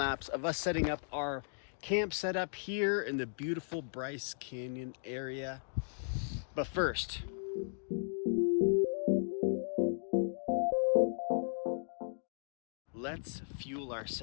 of us setting up our camp setup here in the beautiful Bryce Canyon area. But first, let's fuel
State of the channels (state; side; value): silent; right; digital silence